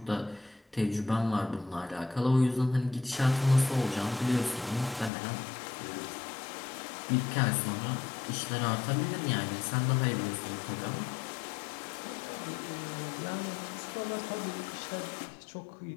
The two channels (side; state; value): right; drops out; at 5.1 s